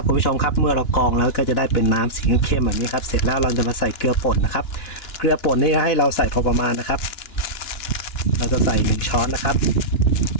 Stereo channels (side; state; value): right; late; 2.9 ms